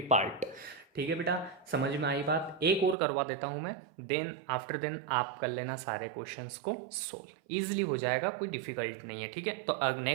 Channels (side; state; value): left; drops out; at 3.0 s